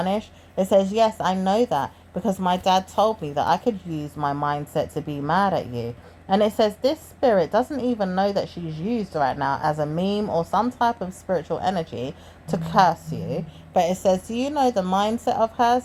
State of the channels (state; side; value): identical; both; correlation 1.00